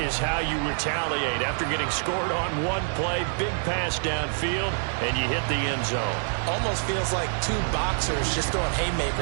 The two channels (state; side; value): silent; left; digital silence